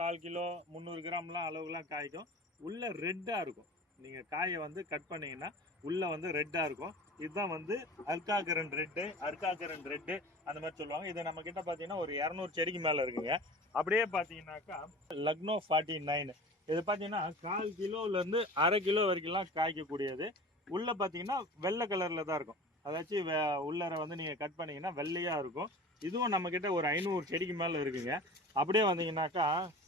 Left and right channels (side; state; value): both; normal; correlation 0.38